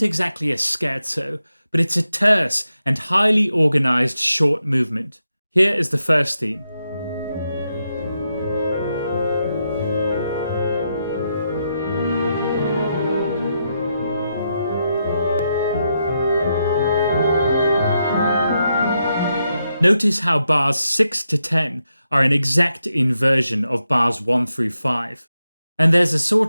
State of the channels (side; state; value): both; inverted; correlation -0.84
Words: exactly a scherzo, but it's a terse and highly organized short movement. Here is the first theme. Notice how bars 6 to 10 are an exact inversion of bars 1 through 5. And there's a